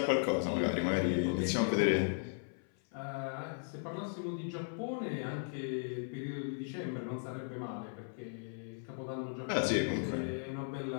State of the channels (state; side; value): silent; right; 53 dB below the other